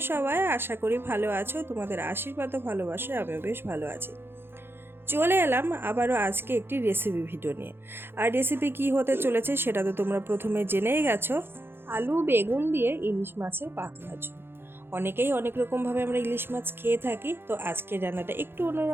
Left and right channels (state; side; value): late; left; 0.11 ms